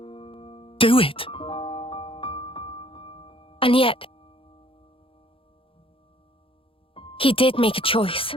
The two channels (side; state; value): right; late; 0.26 ms